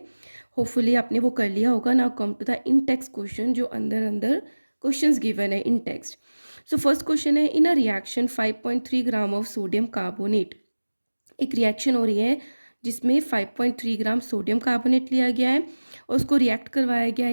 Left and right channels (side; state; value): both; inverted; correlation -1.00